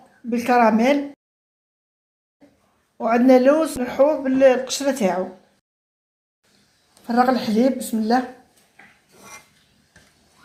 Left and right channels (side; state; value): both; identical; correlation 1.00